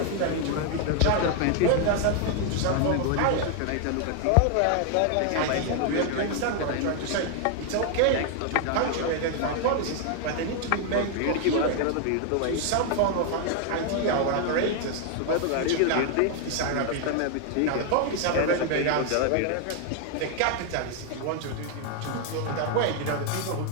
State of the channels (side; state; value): both; different; correlation 0.00